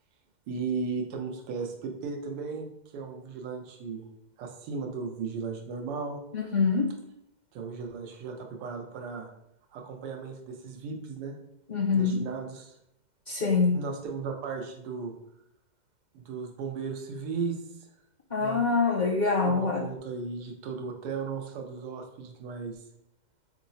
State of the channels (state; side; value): late; left; 2.1 ms